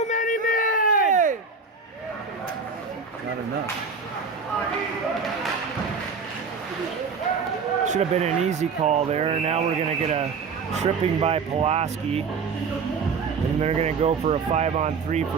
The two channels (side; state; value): left; quieter; 5.2 dB